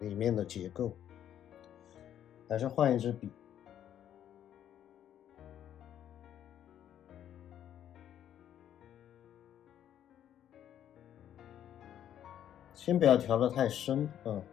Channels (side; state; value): right; quieter; 10.4 dB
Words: 面的结构。还是换一支笔，先不要调得太深，